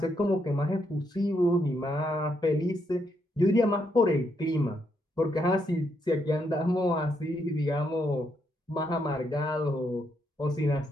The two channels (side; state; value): both; normal; correlation 0.77